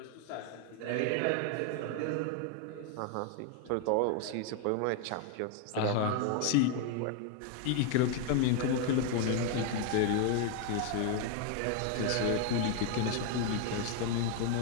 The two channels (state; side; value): different; both; correlation 0.01